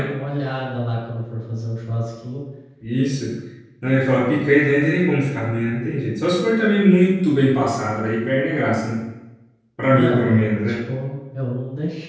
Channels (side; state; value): both; identical; correlation 1.00